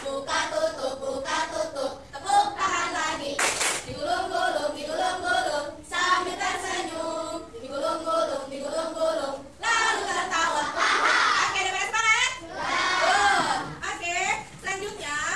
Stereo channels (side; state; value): both; identical; correlation 1.00